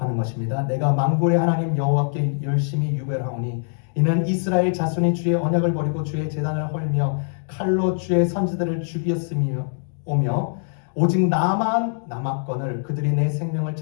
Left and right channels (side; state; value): right; silent; digital silence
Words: 것입니다. 내가 만군의 하나님 여호와께 열심히 유별하오니 이는 이스라엘 자손이 주의 언약을 버리고 주의 제단을 헐며 칼로 주의 선지자들을 죽였으며 오며 오직 나만 남았거늘 그들이 내 생명을